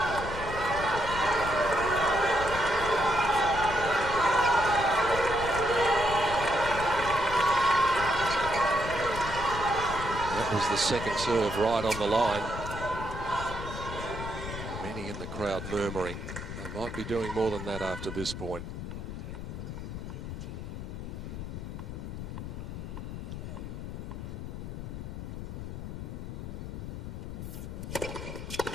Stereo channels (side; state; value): left; noise; rumble, 7 dB below the sound